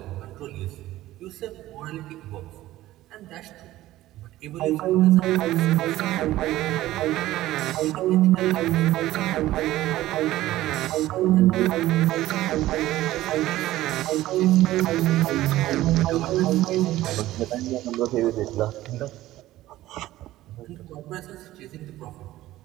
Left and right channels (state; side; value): quieter; left; 15.6 dB